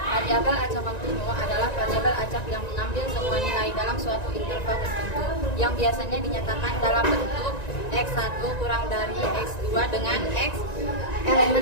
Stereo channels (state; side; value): late; right; 1.9 ms